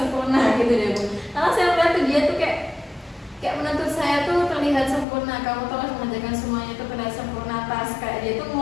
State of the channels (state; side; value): drops out; right; at 5.1 s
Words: gitu deh Bu. Karena saya melihat tuh dia tuh kayak menuntut saya tuh terlihat sempurna, kamu tuh harus mengerjakan semuanya tuh terlihat sempurna, tas kayak dia tuh